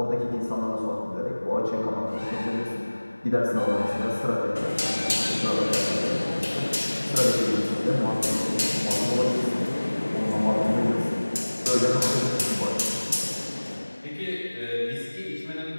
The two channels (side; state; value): both; inverted; correlation -1.00